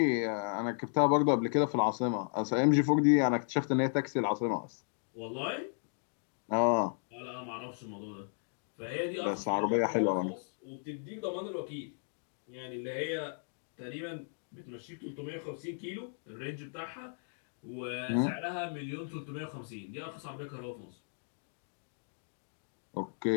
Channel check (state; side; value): silent; right; digital silence